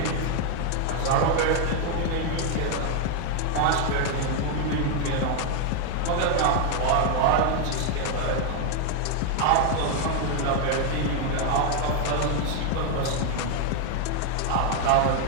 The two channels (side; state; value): both; different; correlation 0.00